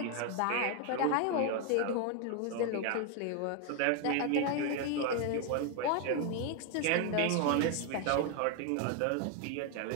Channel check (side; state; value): both; different; correlation 0.01